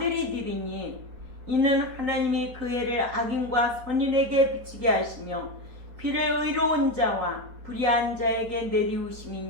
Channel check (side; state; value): left; late; 4.2 ms